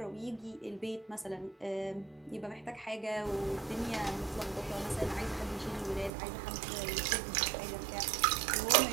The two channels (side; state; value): left; drops out; at 6.1 s